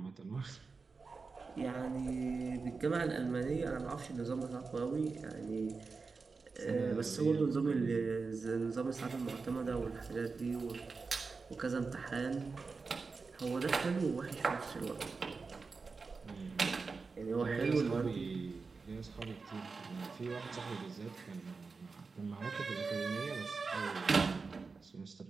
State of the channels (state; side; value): quieter; left; 4.5 dB